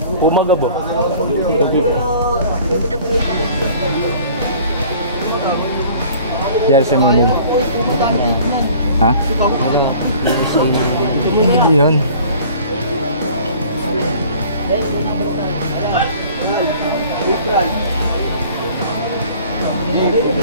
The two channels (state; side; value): inverted; both; correlation -0.49